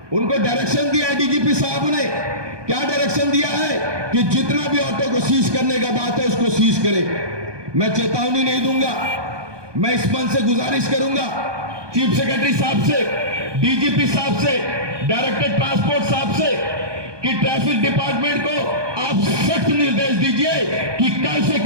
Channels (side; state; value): left; late; 1.2 ms